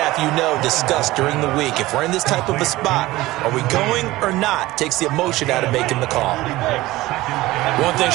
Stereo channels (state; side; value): quieter; left; 18.1 dB